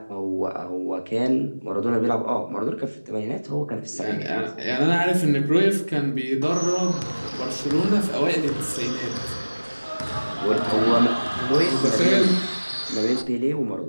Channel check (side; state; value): both; inverted; correlation -1.00